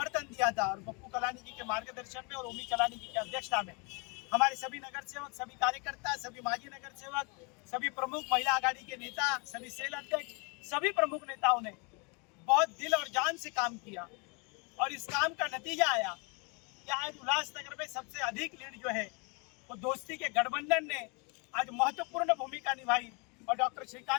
दिया था और पप्पू कलानी जी के मार्गदर्शन में और ओमी कलानी जी की अध्यक्षता में हमारे सभी नगर सेवक, सभी कार्यकर्ता, सभी माजी नगर सेवक, सभी प्रमुख महिला आघाड़ी के नेता, सभी सेल अध्यक्ष, सभी प्रमुख नेताओं ने बहुत दिल और जान से काम किया और इस काम का नतीजा आया कि आज उल्लासनगर में सबसे अधिक लीड जो है वो दोस्ती के गठबंधन ने आज महत्वपूर्ण भूमिका निभाई और डॉक्टर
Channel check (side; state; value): right; quieter; 32.2 dB